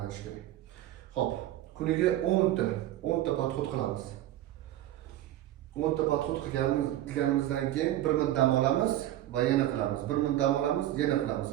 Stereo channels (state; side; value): quieter; left; 13.8 dB